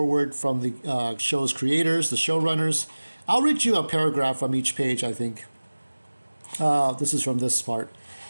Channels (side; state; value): both; inverted; correlation -1.00